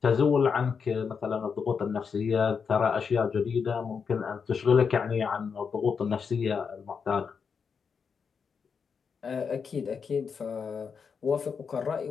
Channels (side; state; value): right; quieter; 6.0 dB